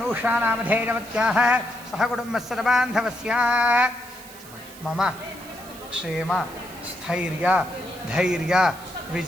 सहकुटुम्बस्य बान्धवस्य मम क्षेम स्थैर्य धैर्य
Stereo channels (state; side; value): noise; right; hiss, 18 dB below the sound